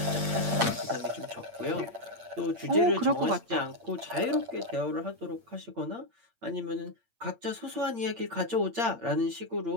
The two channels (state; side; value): late; left; 8.7 ms